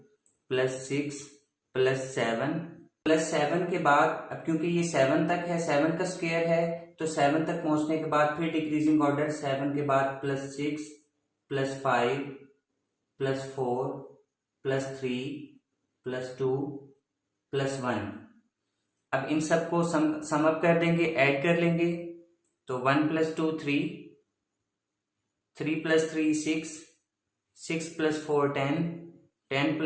plus 6 plus 7। Plus 7 के बाद, अब क्योंकि ये 7 तक है, 7 का स्क्वायर है, तो 7 तक पहुंचने के बाद फिर डिक्रीजिंग ऑर्डर। 7 के बाद plus 6 plus 5 plus 4 plus 3 plus 2 plus 1। अब इन सबको सम अप कर देंगे, ऐड कर लेंगे। तो 1 plus 2 3, 3 plus 3 6, 6 plus 4 10, 10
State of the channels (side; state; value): both; identical; correlation 1.00